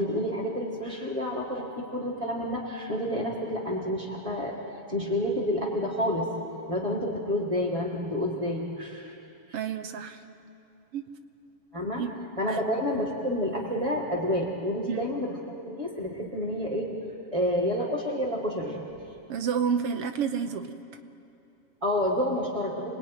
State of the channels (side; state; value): left; late; 7.2 ms